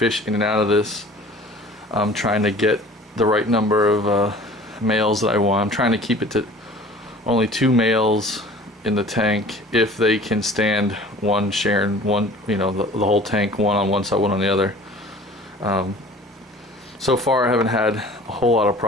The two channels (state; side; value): normal; both; correlation 0.46